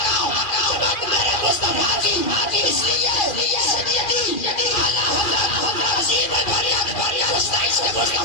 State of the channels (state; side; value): late; right; 2.4 ms